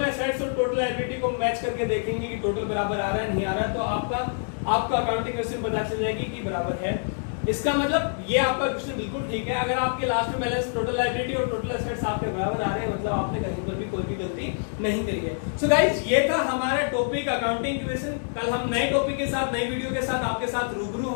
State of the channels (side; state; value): right; silent; 61 dB below the other